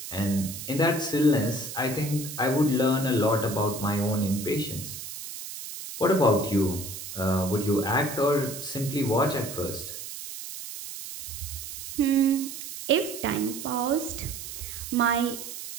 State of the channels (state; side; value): noise; right; hiss, 9 dB below the sound